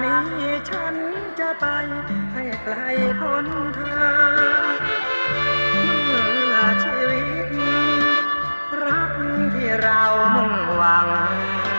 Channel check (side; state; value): both; inverted; correlation -1.00